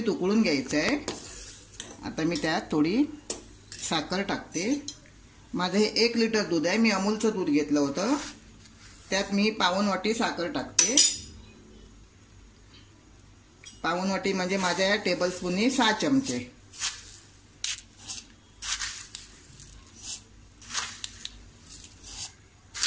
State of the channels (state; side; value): identical; both; correlation 1.00